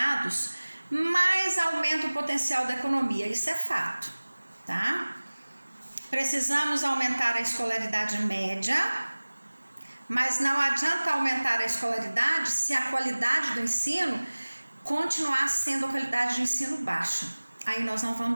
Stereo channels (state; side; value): inverted; both; correlation -1.00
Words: mais aumenta o potencial da economia. Isso é fato, tá? Precisamos aumentar a escolaridade média, mas não adianta aumentar a escolaridade se a qualidade do ensino continuar sendo a qualidade de ensino baixa. Aí nós não